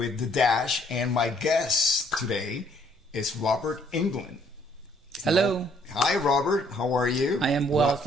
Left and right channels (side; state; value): both; normal; correlation 0.64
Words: The Dash, and my guest today is Robert England. Hello. Hi, Robert. How are you? I am well,